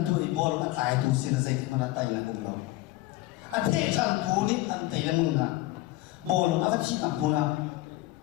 tụi bol các tài tu sinh ra cái mà tài là cùng lòng, thế rằng tu đi ăn tài là mừng à, bol nó chỉ là bol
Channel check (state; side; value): quieter; right; 17.8 dB